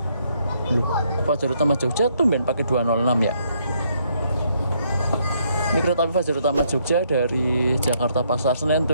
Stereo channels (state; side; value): inverted; both; correlation -0.72